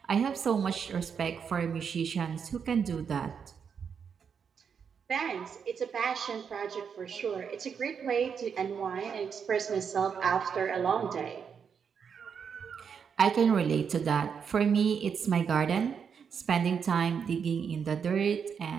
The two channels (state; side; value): quieter; left; 6.8 dB